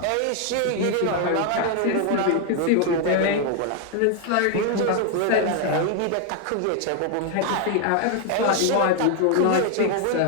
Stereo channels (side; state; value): both; different; correlation 0.00